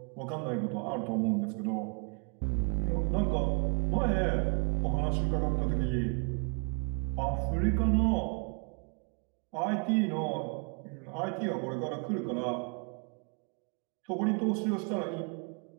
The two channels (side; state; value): left; quieter; 38.1 dB